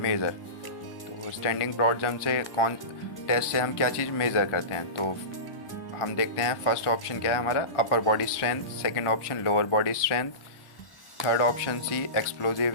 तो स्टैंडिंग ब्रॉड जंप से टेस्ट से हम क्या चीज़ मेज़र करते हैं? तो हम देखते हैं फर्स्ट ऑप्शन क्या है हमारा, upper body strength, second option lower body strength, third option C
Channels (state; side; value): late; right; 1.4 ms